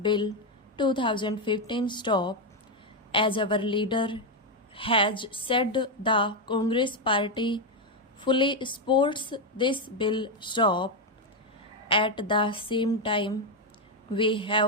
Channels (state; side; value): normal; both; correlation 0.05